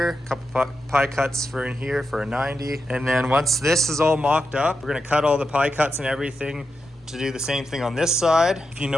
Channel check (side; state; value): both; normal; correlation 0.87